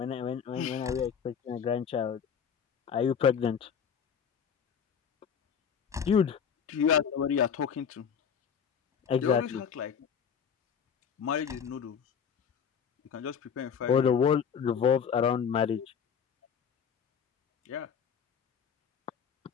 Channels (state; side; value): quieter; right; 7.3 dB